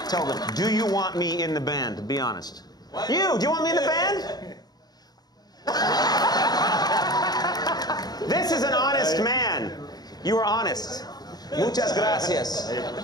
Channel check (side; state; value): right; late; 0.19 ms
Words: Tell them, do you want me in the band? Be honest. Do you want me in the band? This is an honest man. You are honest. Muchas gracias.